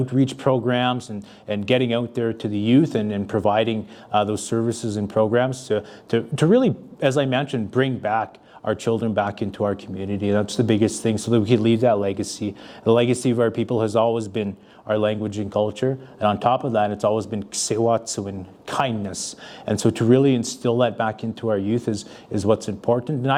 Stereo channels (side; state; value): both; identical; correlation 1.00